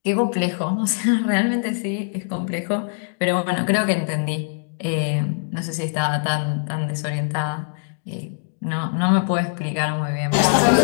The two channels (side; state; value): right; silent; digital silence